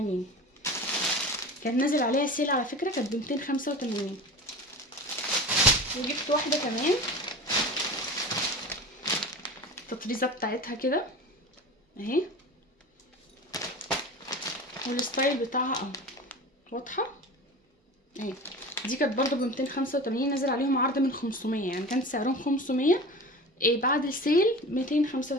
كان نازل عليها سيل على فكره، كانت ب 285. وجبت واحده كمان التطريزه بتاعتها كده اهي، والستايل بتاعها اهو واضحه اهي. دي كانت برضه ب 285، نازل عليهم عرض من 500، يعني كانت سعرهم 500 بعد السيل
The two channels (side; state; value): both; normal; correlation 0.34